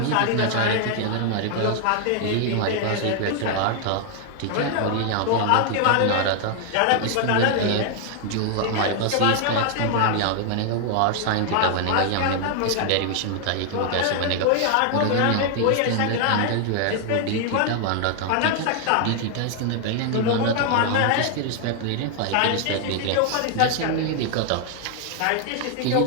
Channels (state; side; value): different; both; correlation 0.00